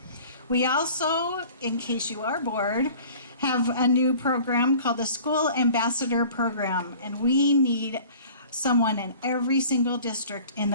We also, in case you are bored, have a new program called the School Ambassador Program, and we need someone in every single district in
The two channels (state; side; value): inverted; both; correlation -0.46